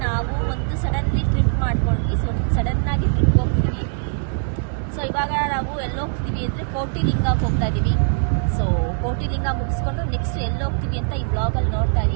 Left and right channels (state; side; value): silent; left; digital silence